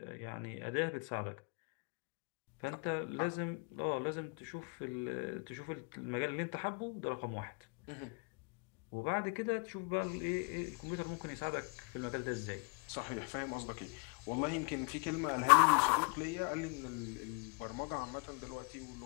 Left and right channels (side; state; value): right; quieter; 32.5 dB